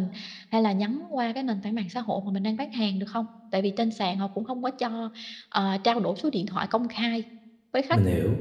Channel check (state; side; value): identical; both; correlation 1.00